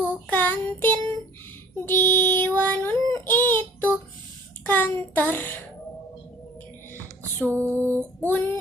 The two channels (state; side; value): normal; both; correlation 0.51